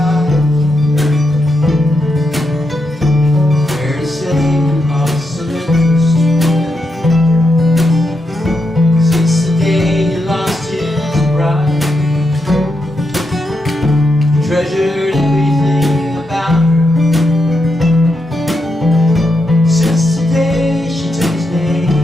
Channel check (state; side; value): normal; both; correlation 0.84